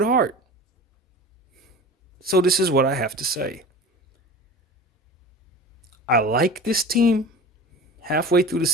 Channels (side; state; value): both; normal; correlation 0.36